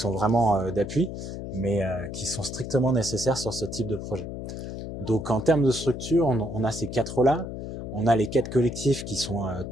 vraiment d'appui, mais qui sont strictement nécessaires sur ce type de projet. Donc en termes de structure, on a ces quatre-là. On a les 4 collectifs qui sont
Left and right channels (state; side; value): noise; left; hum, 7 dB below the sound